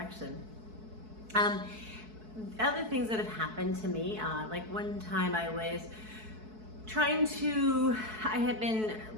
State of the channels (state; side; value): late; left; 4.6 ms